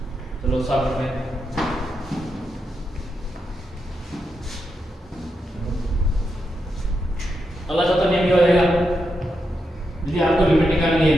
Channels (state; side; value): normal; both; correlation 0.85